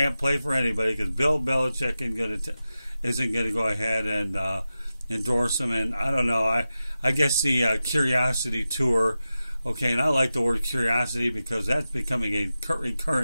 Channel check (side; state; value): both; inverted; correlation -0.93